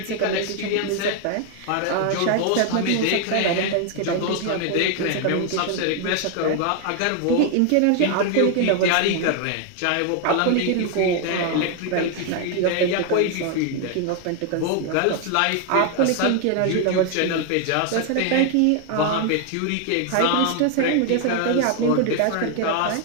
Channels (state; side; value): different; both; correlation 0.01